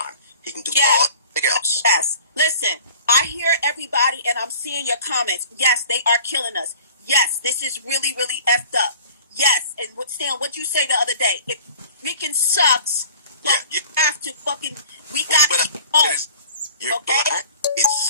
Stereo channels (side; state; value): both; inverted; correlation -0.45